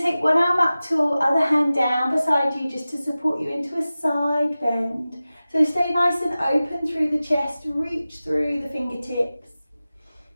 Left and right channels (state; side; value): inverted; both; correlation -0.96